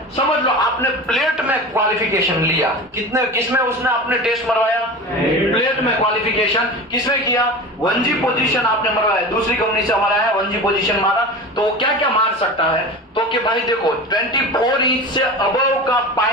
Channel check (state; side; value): normal; both; correlation 0.31